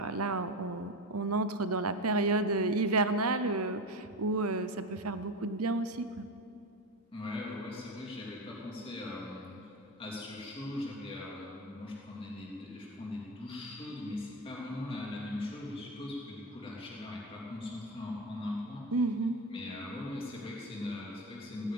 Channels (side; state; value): both; normal; correlation 0.19